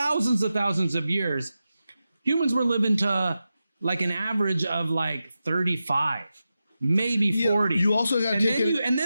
of years, humans were living to an average of 35. Maybe 40. You also got to take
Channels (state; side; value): inverted; both; correlation -0.91